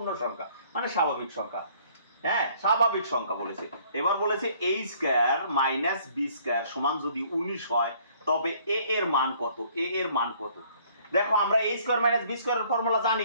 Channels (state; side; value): inverted; both; correlation -0.60